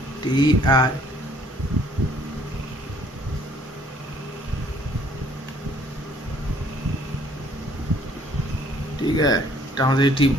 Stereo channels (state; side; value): normal; both; correlation 0.60